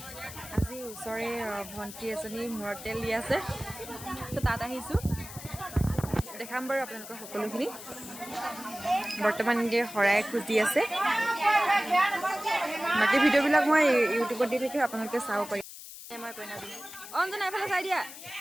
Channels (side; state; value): left; noise; hiss, 13 dB below the sound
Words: আজি ওচৰে ভণ্টি এজনী মূৰত তেল দি আছে, তো তাত আহিছোঁ। দেখাম বাৰু আপোনালোকৰ সকলোখিনি। বৰ্তমান এনেকৈ শৰাই খোজ দি আছে। বাকী ভিডিঅ'বিলাক মই ইউটিউবত দি থাকোঁ, আপোনালোকে চাব পাৰিব। মই কইনা দিম। অঞ্জনা এফালে চাই দিয়া।